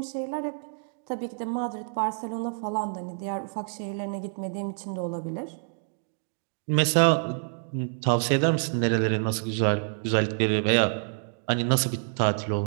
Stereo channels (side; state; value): left; silent; digital silence